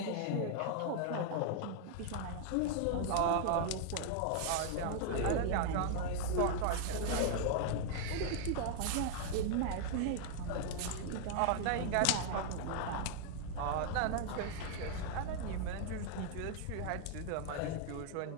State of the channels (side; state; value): both; different; correlation 0.00